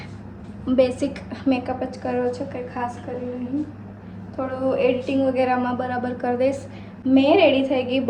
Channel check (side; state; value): both; identical; correlation 1.00